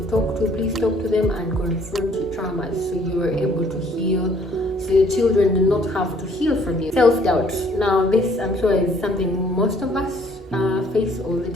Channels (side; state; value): both; normal; correlation 0.61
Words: talk to, please talk to them and confront your traumas so you are able to heal, so your children do not have to heal from you. Self-doubt. Now this, I'm sure, is something most of us face all the